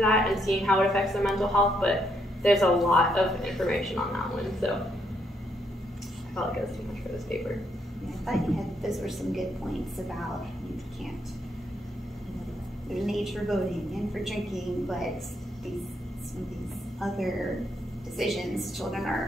and seeing how it affects their mental health, but there's a lot of information on that one, so I felt like it was too much for this paper. Yeah, I thought those were some good points about you can't, there's an age for voting and for drinking, but some of these other decisions children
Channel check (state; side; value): normal; both; correlation 0.75